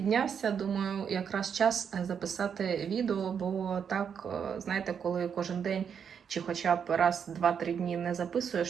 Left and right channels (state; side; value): quieter; left; 7.3 dB